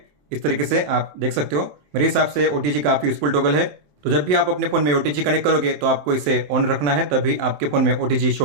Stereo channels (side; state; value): left; late; 27 ms